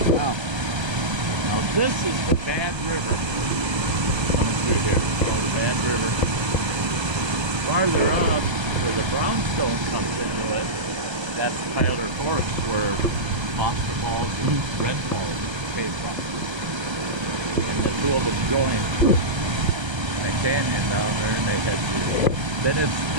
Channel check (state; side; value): late; left; 1.3 ms